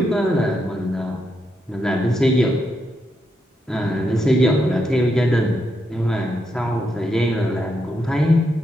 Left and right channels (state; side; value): normal; both; correlation 0.82